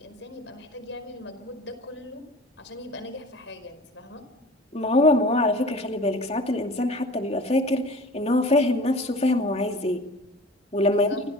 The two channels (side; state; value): both; normal; correlation 0.41